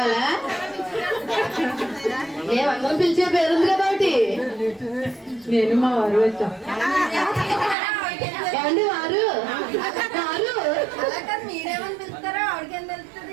మేమందరం పిలిచే పేరుంది కదా ఒకటి. నేను మా వారు వచ్చాం. ఏమండి వారు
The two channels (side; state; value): left; drops out; at 7.8 s